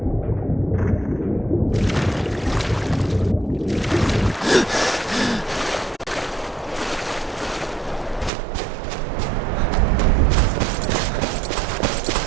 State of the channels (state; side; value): drops out; left; at 8.3 s